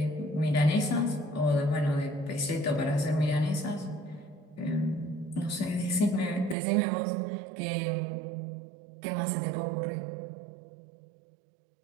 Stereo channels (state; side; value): drops out; left; at 6.6 s